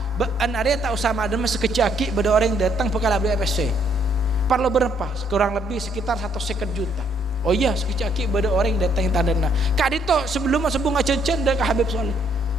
an area tak usah madem sekecaki pada orang yang datang bekal beli FSC perlu berapa kurang lebih sekitar 150 juta oh iya sekecaki pada orang yang datang yang tandana kak dito sebelum sebung acen-cen dah ke Habib Soleh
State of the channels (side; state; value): both; normal; correlation 0.68